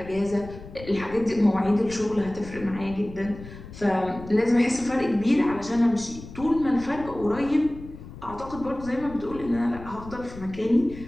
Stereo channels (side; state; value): left; noise; rumble, 15 dB below the sound